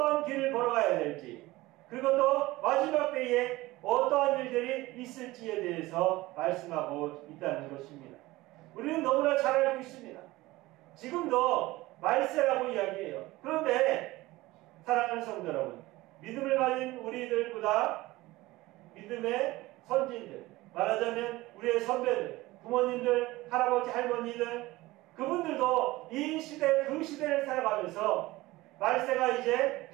길을 걸어가야 될지, 그리고 또 마지막 때에 어떠한 일들이 있을지에 대해서 말씀하고 있다는 것입니다. 우리는 너무나 잘 알고 있습니다. 지금도 말세라고 이야기해요. 그런데 사랑하는 성도 여러분, 믿음을 가진 우리들보다 믿음의 선진들, 말하자면 우리의 선배들, 부모님들, 할아버지, 할머니들, 그분들도 이 시대, 그 시대를 살아가면서 말세가 이제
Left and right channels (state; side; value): quieter; left; 19.2 dB